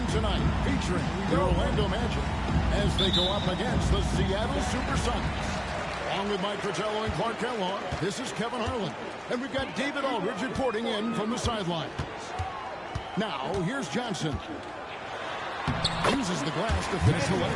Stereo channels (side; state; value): both; identical; correlation 1.00